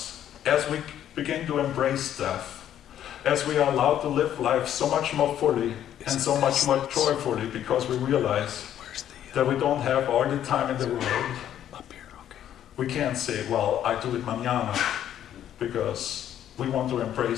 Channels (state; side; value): quieter; right; 10.8 dB